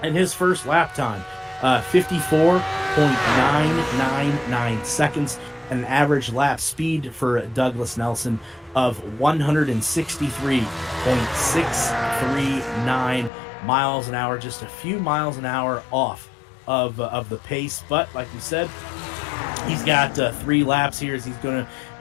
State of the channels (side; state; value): right; drops out; at 13.3 s